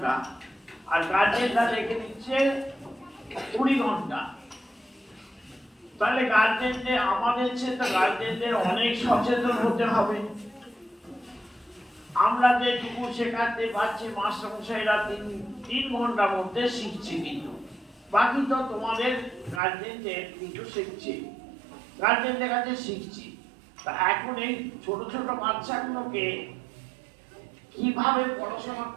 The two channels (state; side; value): drops out; left; at 19.6 s